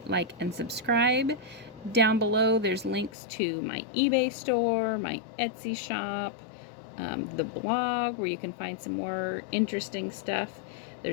like, and subscribe. Down below there's links to my eBay store, my Etsy shop, the blog where you can find some more interesting stuff.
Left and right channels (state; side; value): drops out; right; at 3.1 s